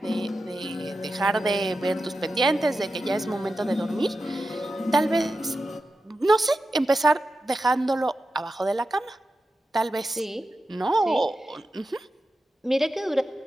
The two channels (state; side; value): normal; both; correlation 0.91